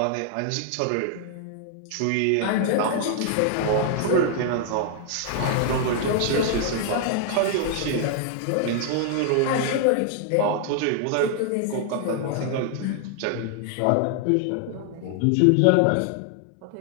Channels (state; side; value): different; both; correlation 0.00